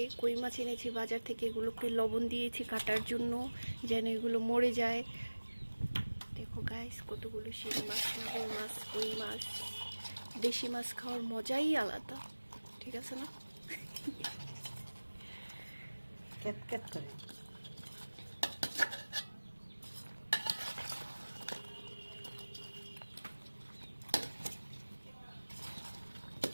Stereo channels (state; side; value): inverted; both; correlation -1.00